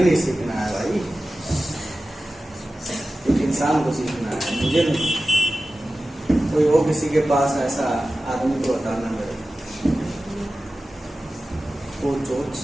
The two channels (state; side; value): normal; both; correlation 0.95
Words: नहीं सीखना है भाई, एक इंसान को सीखना है, मुझे नहीं। कोई हो किसी के पास ऐसा आदमी को बताना मेरे को, तो